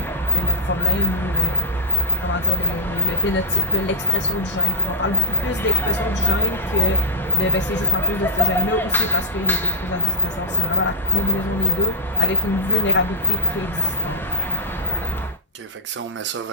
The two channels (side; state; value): both; normal; correlation -0.10